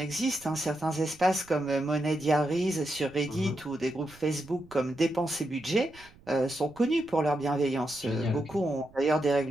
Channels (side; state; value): right; noise; rumble, 25 dB below the sound